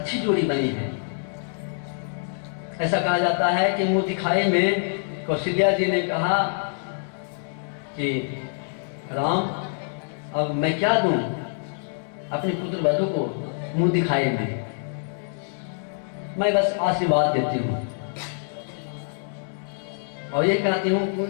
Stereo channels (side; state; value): right; silent; digital silence